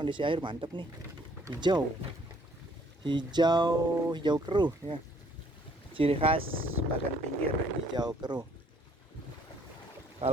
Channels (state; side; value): normal; both; correlation 0.62